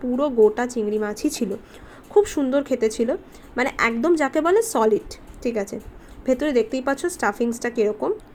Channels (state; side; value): identical; both; correlation 1.00